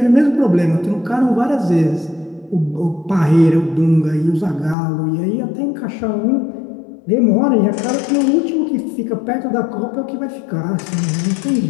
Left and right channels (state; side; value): drops out; right; at 4.8 s